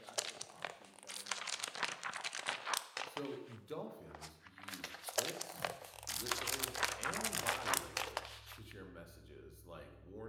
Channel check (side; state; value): both; identical; correlation 1.00